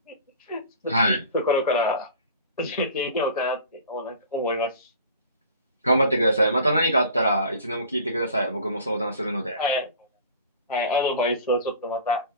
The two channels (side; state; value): both; inverted; correlation -0.42